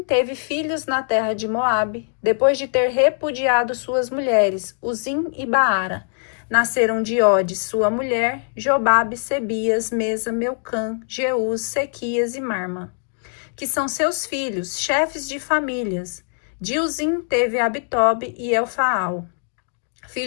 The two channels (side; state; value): right; silent; 61 dB below the other